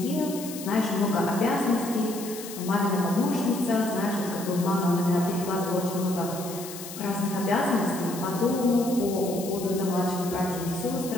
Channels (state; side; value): noise; left; hiss, 12 dB below the sound